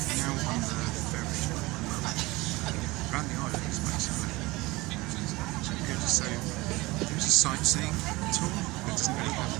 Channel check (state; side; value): quieter; left; 21.6 dB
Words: ferry around the islands, basically. So there's a sightseeing tour, but it doesn't really